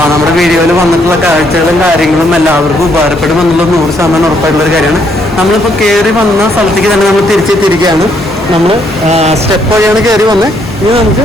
വീഡിയോയിൽ വന്നിട്ടുള്ള കാഴ്ചകളും കാര്യങ്ങളും എല്ലാവർക്കും ഉപകാരപ്പെടുമെന്നുള്ളത് 100% ഉറപ്പായിട്ടുള്ളൊരു കാര്യമാണ്. നമ്മളിപ്പോൾ കയറി വന്ന സ്ഥലത്തേക്ക് തന്നെ നമ്മൾ തിരിച്ചെത്തിയിരിക്കുകയാണ്. നമ്മൾ സ്റ്റെപ്പ് വഴിയാണ് കയറി വന്നത്. ഇനി നമുക്ക്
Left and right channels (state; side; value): normal; both; correlation 0.71